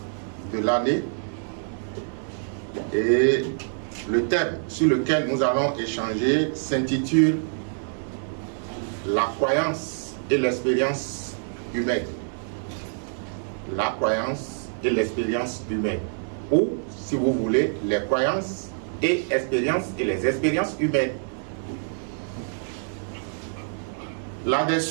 de l'année, et le thème sur lequel nous allons échanger s'intitule La croyance et l'expérience humaine. La croyance et l'expérience humaine, ou si vous voulez, les croyances et expériences et les expériences humaines.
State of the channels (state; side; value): silent; left; digital silence